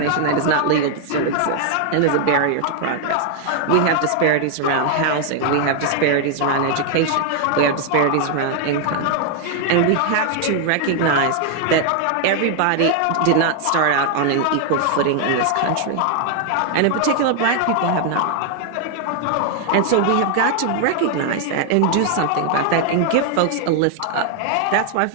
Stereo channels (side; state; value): both; different; correlation 0.00